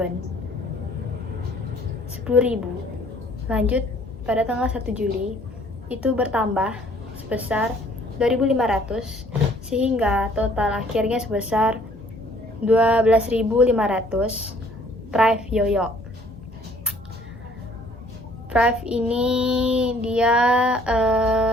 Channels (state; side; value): normal; both; correlation 0.58